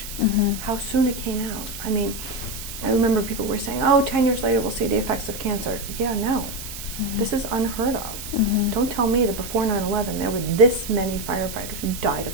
how soon it came out. I mean, I remember people were saying, 10 years later we'll see the effects of cancer. Yeah, no. This is unheard of. Don't tell me that before 9/11 there were this many firefighters who died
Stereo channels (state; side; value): noise; right; hiss, 10 dB below the sound